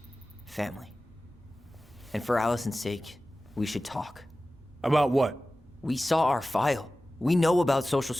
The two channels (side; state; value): both; normal; correlation 0.96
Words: Family. And for Allison's sake, we should talk. About what? We saw our file. We know about social